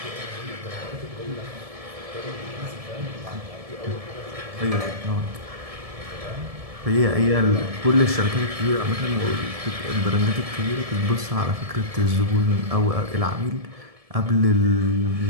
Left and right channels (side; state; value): left; late; 1.7 ms